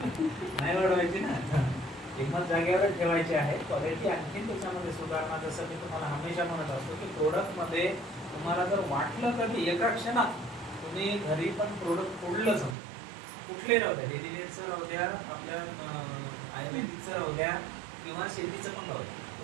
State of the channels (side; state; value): left; drops out; at 12.8 s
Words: नाही वाढवायची ना, किंमत जागेवर ठेवायची आहे. क्वालिटी आणखी त्याच्यामध्ये सुधारणा, जसं मी तुम्हाला हमेशा म्हणत असतो की प्रोडक्टमध्ये तुम्हाला जर वाटलं कधी एका क्षणात तुम्ही घरी पण प्रोडक्ट फोडलं समजा, कुठले राहू द्या, डेलीवेअरचं राहू द्या, आपल्या आयुर्वेदिकचं राहू द्या किंवा शेतीचं पण राहू द्या,